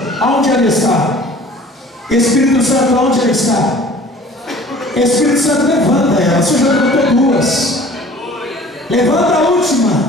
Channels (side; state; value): both; normal; correlation 0.48